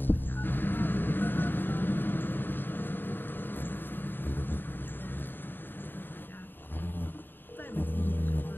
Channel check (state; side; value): late; right; 0.094 ms